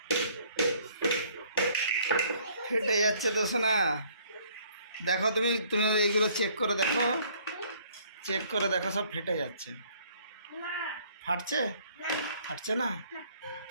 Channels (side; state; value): both; inverted; correlation -0.60